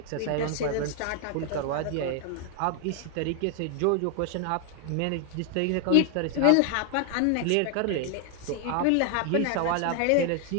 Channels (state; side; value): different; both; correlation 0.00